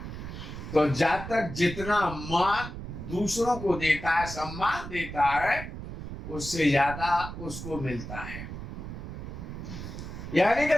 तो जातक जितना मान दूसरों को देता है, सम्मान देता है, उससे ज्यादा उसको मिलता है। यानी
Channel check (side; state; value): right; noise; rumble, 9 dB below the sound